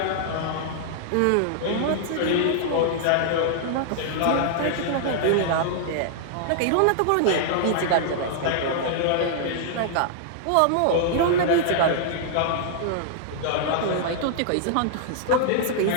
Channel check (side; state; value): both; different; correlation -0.01